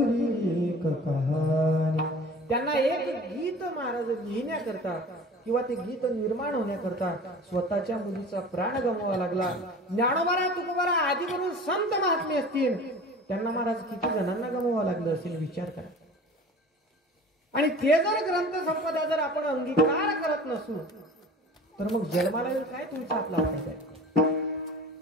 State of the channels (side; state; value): both; normal; correlation 0.41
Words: एक कहाणी. त्यांना एक गीत महाराज लिहिण्याकरता किंवा ते गीत निर्माण होण्याकरता स्वतःच्या मुलीचा प्राण गमवावा लागला. ज्ञानोबा तुकोबा आधी करून संत महात्मे असतील, त्यांना महाराज किती जणांना गमवावं लागलं असेल विचार करा. आणि ते जर ग्रंथ संपदा जर आपण अंगीकार करत नसू तर मग जन्माला काय तुमचा आपला वाटायचा